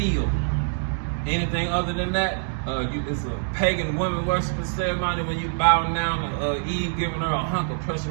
Anything other than that, it's a pagan woman worshiping ceremony when you bow down to Eve, giving her a hunk of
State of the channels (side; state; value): left; silent; digital silence